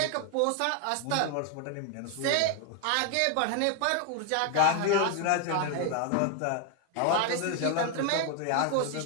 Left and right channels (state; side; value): different; both; correlation 0.01